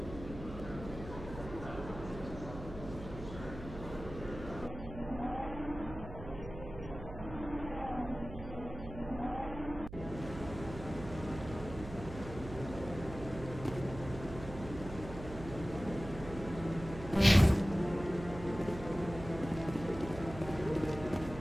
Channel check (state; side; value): noise; right; hum, 11 dB below the sound